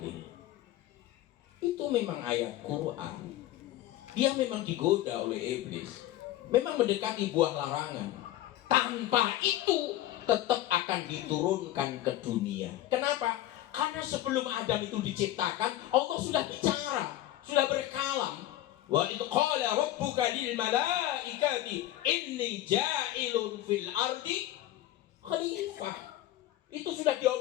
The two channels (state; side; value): quieter; right; 14.2 dB